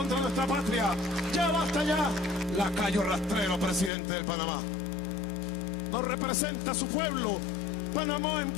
nuestra patria. Ya basta ya. Lacayo rastrero, presidente de Panamá. No representa a su pueblo. Panamá es un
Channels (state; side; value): drops out; right; at 3.9 s